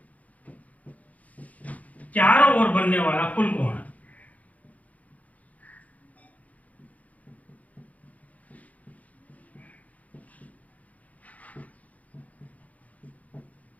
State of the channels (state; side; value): late; right; 0.072 ms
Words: चारों ओर बनने वाला कुल कोण है।